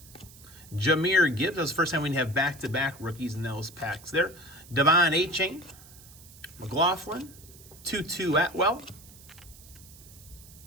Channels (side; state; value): right; noise; hiss, 21 dB below the sound